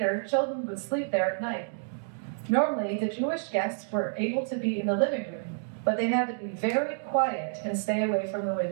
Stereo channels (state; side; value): silent; left; digital silence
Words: children would sleep there at night. Normally, the Jewish guests were able to be in the living room, but they had to be very quiet and stay away from the